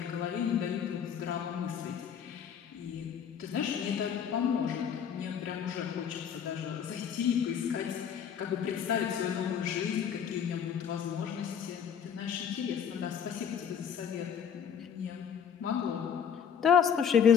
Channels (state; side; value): quieter; right; 7.8 dB